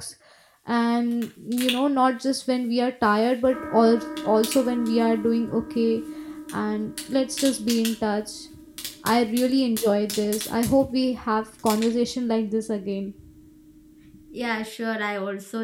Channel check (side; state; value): both; identical; correlation 1.00